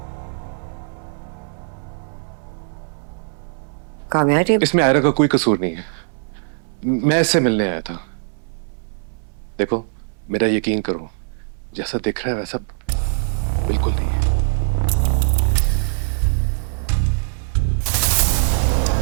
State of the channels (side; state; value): left; silent; 62 dB below the other